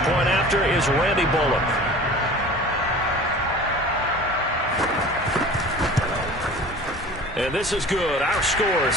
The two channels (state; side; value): normal; both; correlation 0.41